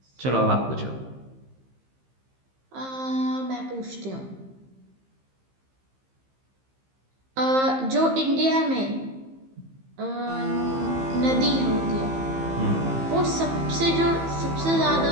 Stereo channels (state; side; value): late; left; 15 ms